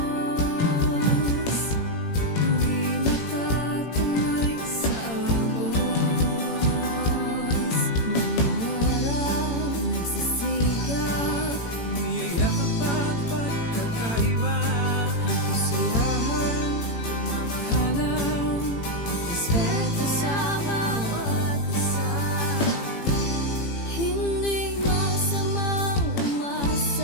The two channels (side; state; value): right; late; 18 ms